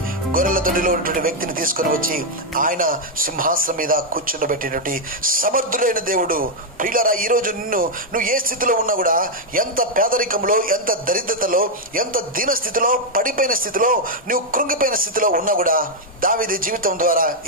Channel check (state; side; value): normal; both; correlation 0.00